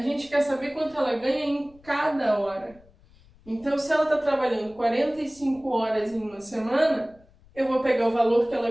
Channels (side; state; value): left; noise; rumble, 28 dB below the sound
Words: quer saber quanto ela ganha em cada hora. Então, se ela está trabalhando 45 horas em uma semana, eu vou pegar o valor que ela